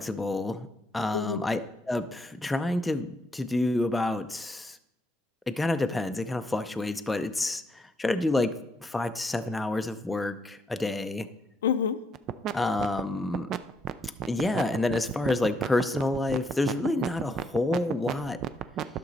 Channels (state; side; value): normal; both; correlation 0.74